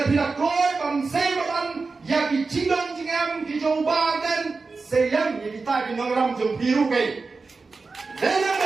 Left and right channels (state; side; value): quieter; left; 4.2 dB